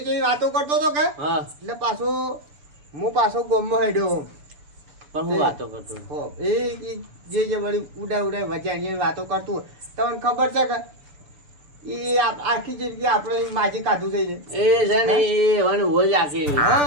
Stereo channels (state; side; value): late; left; 6.8 ms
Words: વાતો કરતો હતો કે હા એટલે હું પાછો ગામમાં હેડ્યો પણ હું વાતો કરતો હો એ જે વળી ઉડાય વજાણી વાતો કરતું હોય. તમને ખબર છે કે એ આખી જિંદગી આપણે માજી કાઢું થઈ એ છે ને એ હવે હોજ આખી